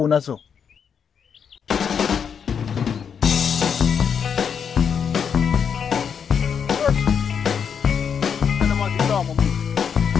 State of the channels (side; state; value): right; quieter; 7.1 dB